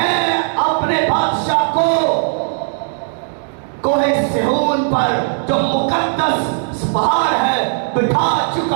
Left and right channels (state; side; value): silent; left; digital silence